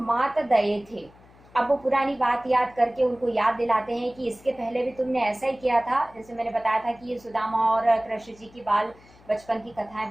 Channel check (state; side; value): noise; left; hum, 26 dB below the sound